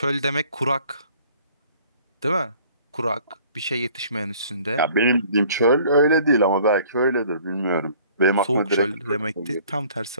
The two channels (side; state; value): both; inverted; correlation -0.54